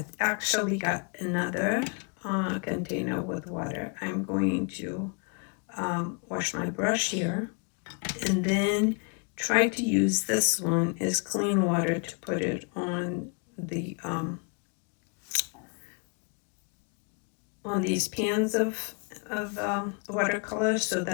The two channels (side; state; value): right; quieter; 36.7 dB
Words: actually got another container with water. I'm going to wash my brush here and then try to use this one as clean water to put it on the on these pans of watercolor so